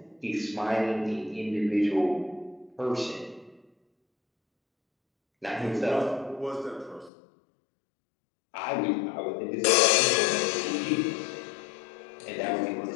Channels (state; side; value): drops out; right; at 7.1 s